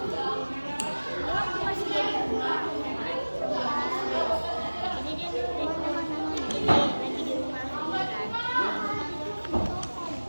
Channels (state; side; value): inverted; both; correlation -1.00